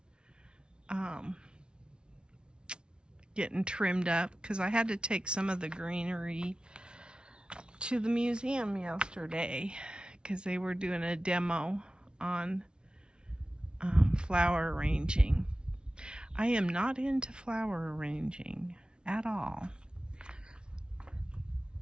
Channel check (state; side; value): late; left; 0.055 ms